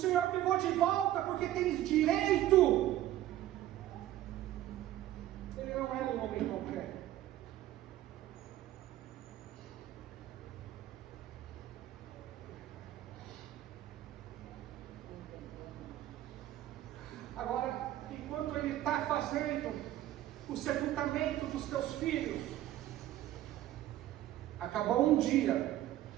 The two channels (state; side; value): quieter; left; 13.7 dB